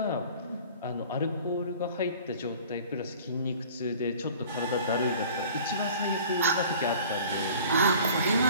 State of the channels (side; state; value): both; inverted; correlation -0.47